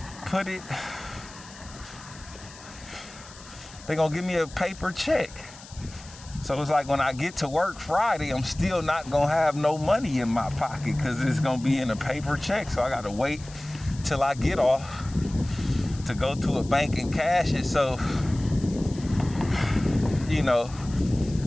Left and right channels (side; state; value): left; noise; hiss, 19 dB below the sound